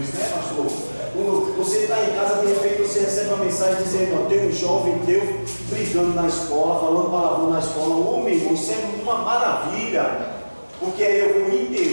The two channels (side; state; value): both; inverted; correlation -1.00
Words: isso, né, pastor? Quando você está em casa, de repente você recebe uma mensagem dizendo: ó, tem um jovem teu brigando na escola, falando palavrão na escola. Ô, meu irmão, isso é uma maravilha. Porque aí eu vou